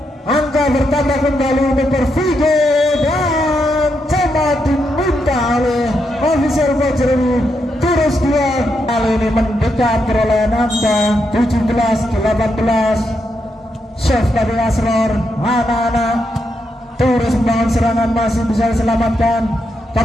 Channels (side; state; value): both; normal; correlation 0.82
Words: Angka bertambah kembali untuk Pervigo dan coba diminta oleh official coach ini. Tures 2 kali ini mendekat perolehan angka 17-18. Save dari Asrar, anak-anak. Terus membangun serangan, masih bisa diselamatkan.